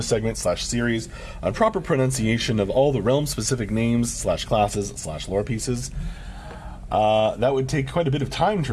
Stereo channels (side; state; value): both; identical; correlation 1.00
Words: / series on proper pronunciation of all the realm-specific names / classes / lore pieces? That would take quite a bit of time,